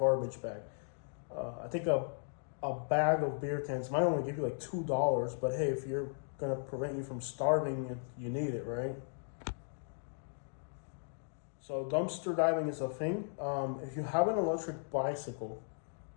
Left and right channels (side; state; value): right; silent; digital silence